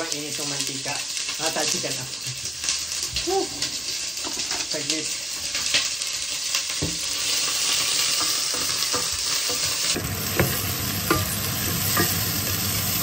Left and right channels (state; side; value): normal; both; correlation 0.95